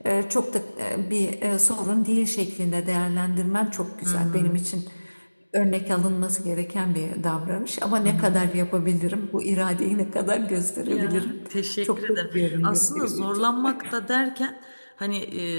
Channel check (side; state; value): both; inverted; correlation -1.00